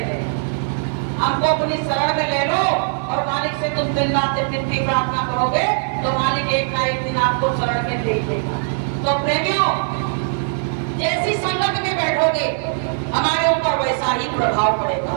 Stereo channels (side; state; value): left; silent; digital silence